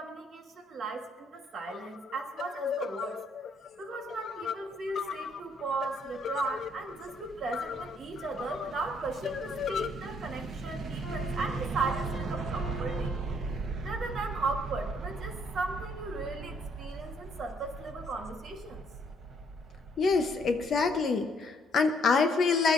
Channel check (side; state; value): both; normal; correlation 0.67